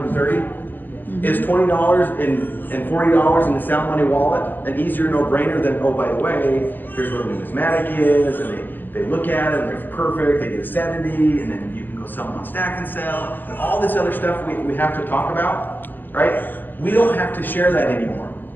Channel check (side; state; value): right; late; 0.088 ms